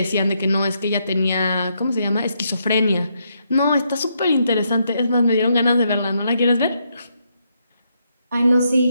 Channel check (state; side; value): inverted; both; correlation -0.78